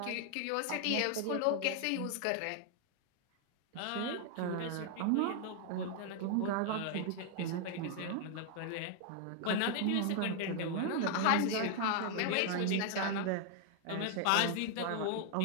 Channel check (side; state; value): both; different; correlation 0.00